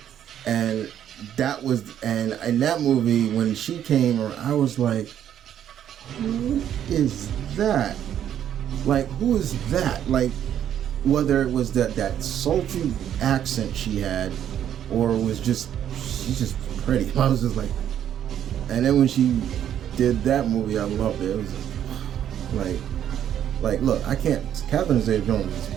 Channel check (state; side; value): quieter; left; 10.2 dB